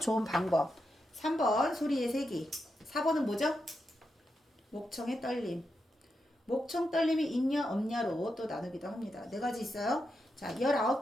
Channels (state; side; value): normal; both; correlation 0.86